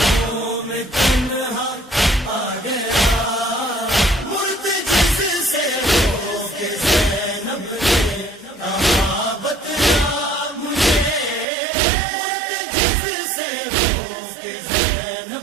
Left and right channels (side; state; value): left; drops out; at 11.5 s